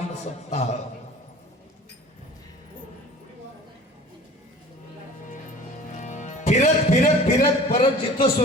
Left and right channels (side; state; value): both; normal; correlation 0.44